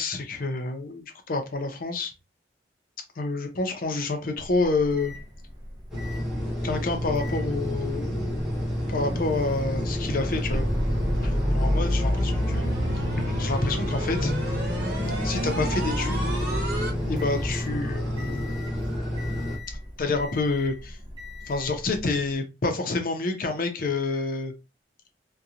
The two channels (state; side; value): normal; both; correlation 0.62